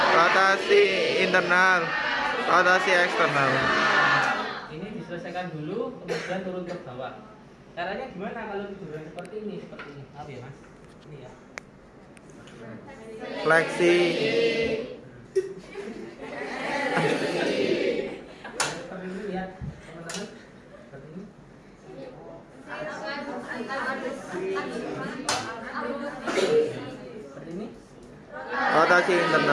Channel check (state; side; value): identical; both; correlation 1.00